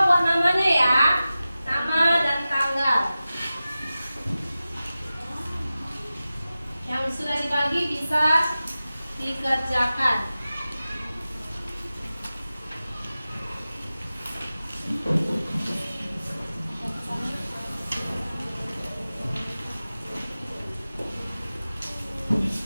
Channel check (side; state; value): both; inverted; correlation -0.95